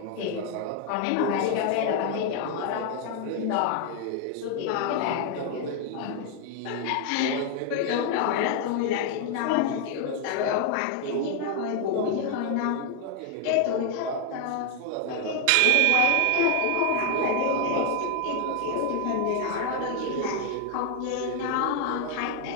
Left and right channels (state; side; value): different; both; correlation 0.01